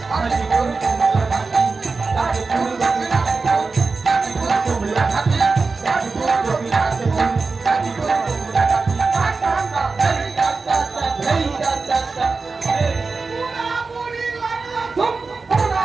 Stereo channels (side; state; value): left; quieter; 4.2 dB